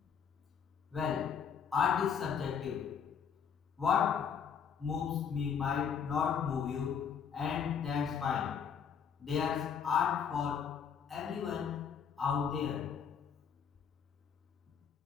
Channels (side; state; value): right; quieter; 7.2 dB